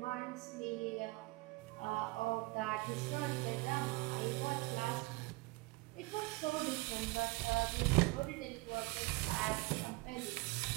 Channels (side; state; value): left; quieter; 23.7 dB